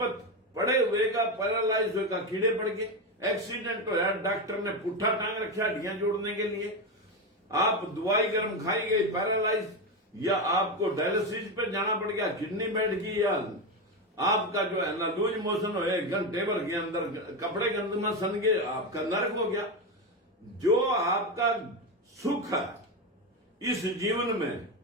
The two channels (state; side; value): normal; both; correlation 0.13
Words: पड़े हुए का, पैरालाइज हुए का कीड़े पड़ गए, एक्सीडेंट हो, डॉक्टर ने पुट्ठा टांग रखा हड्डियां जोड़ने के लिए, आप दवाई गर्म खाई गई पैरालाइज, या आपको डायलिसिस पे जाना पड़ गया, किडनी बैठ गई, या आपका जो है ना लूज मोशन हो, 1 घंटे भर के अंदर कपड़े गंद में सन गए, आपका नरक हो गया। जो आपका सुख है इस जीवन में